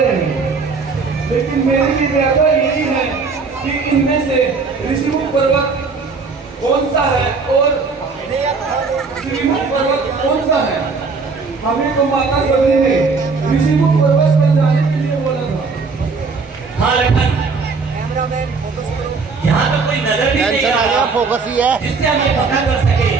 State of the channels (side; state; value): left; quieter; 4.6 dB